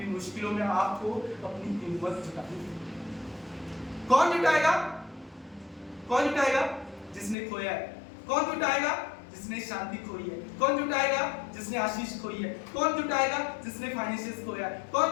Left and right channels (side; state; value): right; drops out; at 7.4 s